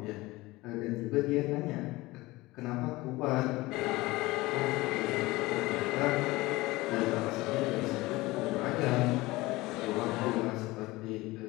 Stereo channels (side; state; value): right; quieter; 20.4 dB